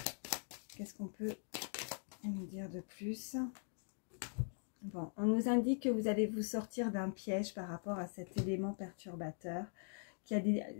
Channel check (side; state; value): right; silent; digital silence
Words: qu'est-ce qu'on peut nous dire de plus? Bon, on nous indique que vous allez vous sortir d'un piège par rapport à cet élément perturbateur.